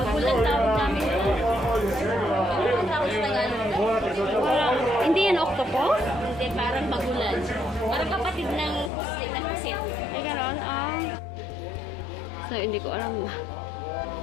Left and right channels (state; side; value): drops out; right; at 8.9 s